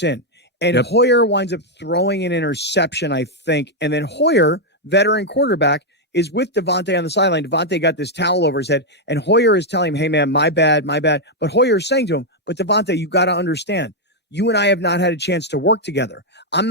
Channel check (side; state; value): both; normal; correlation -0.01